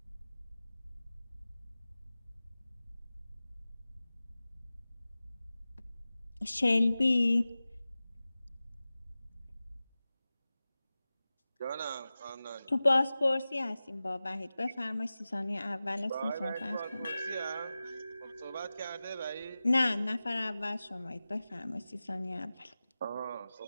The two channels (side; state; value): both; inverted; correlation -0.96